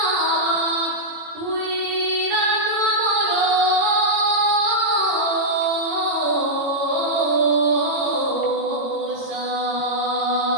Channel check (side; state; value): left; late; 18 ms